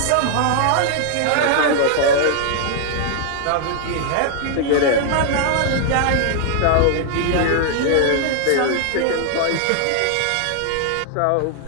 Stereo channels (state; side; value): different; both; correlation 0.00